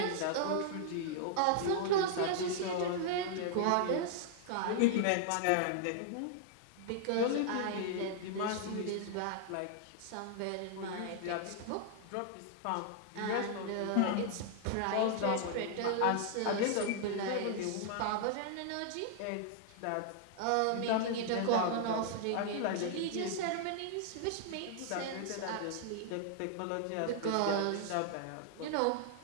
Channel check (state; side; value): different; both; correlation -0.01